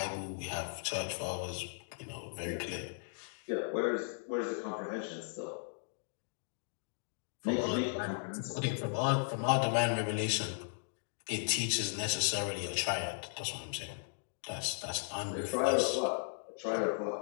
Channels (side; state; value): right; silent; digital silence